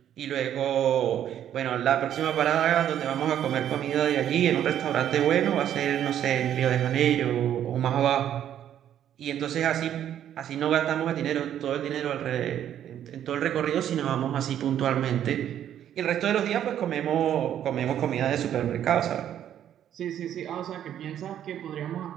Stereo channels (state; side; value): quieter; left; 10.5 dB